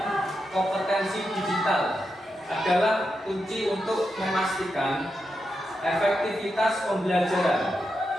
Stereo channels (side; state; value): both; normal; correlation 0.87